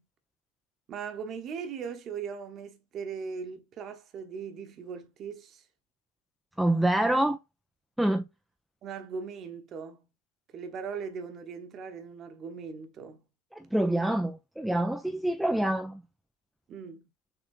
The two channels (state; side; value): normal; both; correlation 0.90